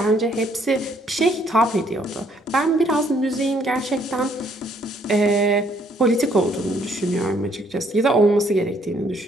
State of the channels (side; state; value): both; normal; correlation 0.67